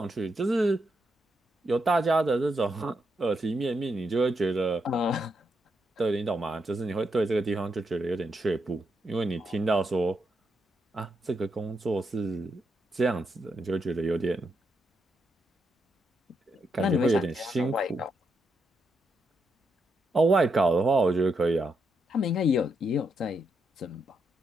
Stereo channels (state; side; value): normal; both; correlation 0.81